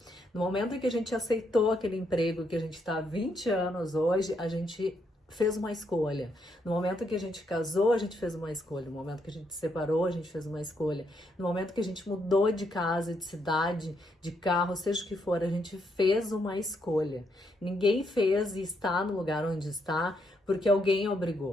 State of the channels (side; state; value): both; normal; correlation 0.76